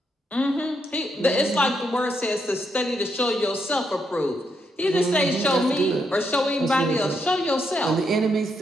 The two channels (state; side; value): normal; both; correlation 0.79